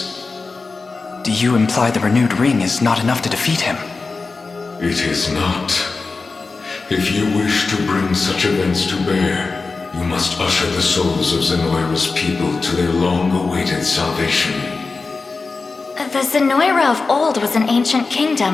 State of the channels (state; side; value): quieter; right; 4.1 dB